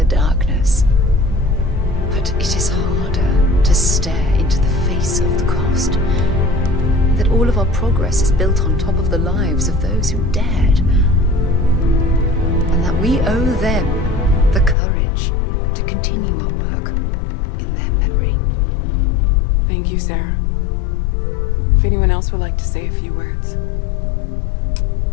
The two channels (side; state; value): right; drops out; at 14.8 s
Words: darkness. But it is harder to stare into the face of the cost. That all of our progress is built on top of the lives of those who dared. And that we owe them the courage to continue our work in their memory. Thank you, Sarah. If anyone else would like to say a few words.